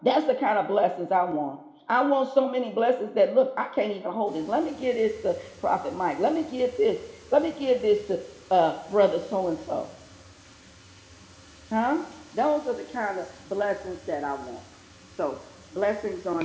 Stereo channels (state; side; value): identical; both; correlation 1.00